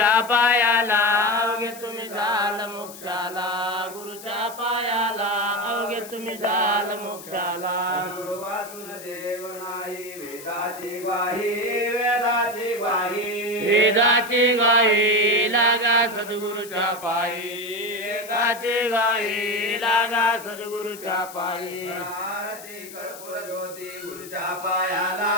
पायाला अवघे तुम्ही जाल मोक्षाला गुरुच्या पायाला अवघे तुम्ही जाल मोक्षाला गुरु वाचून देव नाही वेदाची ग्वाही वेदाची ग्वाही वेदाची गाई लागा सद्गुरुच्या पायी वेदाची गाई लागा सद्गुरुच्या पायी आरती कर्पूर ज्योती गुरुच्या पायाला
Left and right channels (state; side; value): noise; left; hiss, 16 dB below the sound